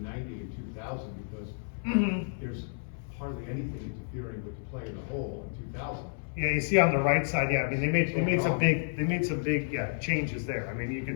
90 and 2000 because there's hardly anything interfering with the play of the hole in 2000. Yeah, you see on the right side, yeah, I mean, they made some big changes there. I mean, you can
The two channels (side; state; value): right; silent; 57 dB below the other